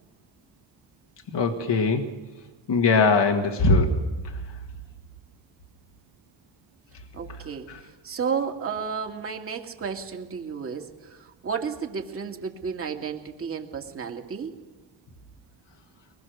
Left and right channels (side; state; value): both; normal; correlation 0.05